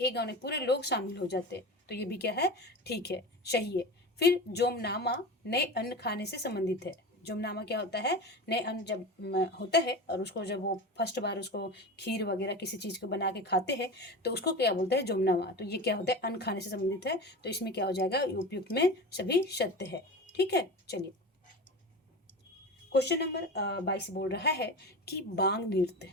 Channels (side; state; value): both; normal; correlation 0.29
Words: गांव में पूरे लोग शामिल हो जाते हैं, तो ये भी क्या है, ठीक है, सही है। फिर जोमनामा नए अन्न खाने से संबंधित है। जोमनामा क्या होता है? नए अन्न जब होता है और उसको जब वो फर्स्ट बार उसको खीर वगैरह किसी चीज़ को बना के खाते हैं तो उसको क्या बोलते हैं? जोमनामा। तो ये क्या होता है? अन्न खाने से संबंधित है, तो इसमें क्या हो जाएगा? उपयुक्त में सभी सत्य है। ठीक है, चलिए क्वेश्चन नंबर 22 बोल रहा है कि बांग नृत्य,